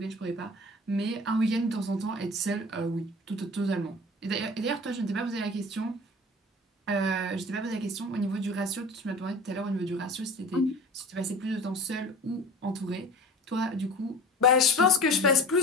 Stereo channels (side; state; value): both; normal; correlation 0.39